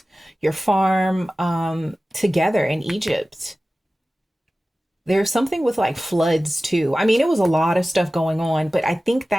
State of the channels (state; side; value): normal; both; correlation 0.96